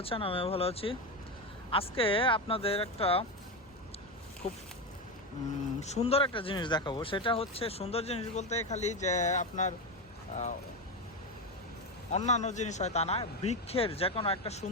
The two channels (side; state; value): both; normal; correlation 0.14